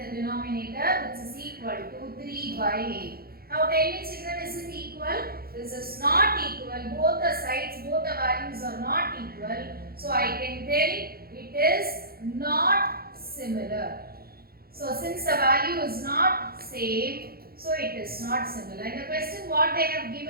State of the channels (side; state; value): left; late; 0.44 ms